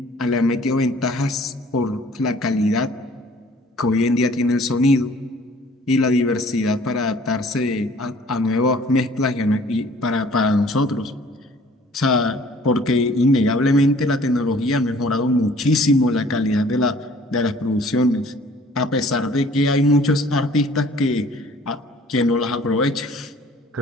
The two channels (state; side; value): normal; both; correlation 0.54